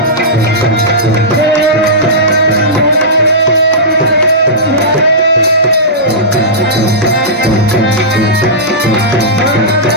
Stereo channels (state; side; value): normal; both; correlation -0.17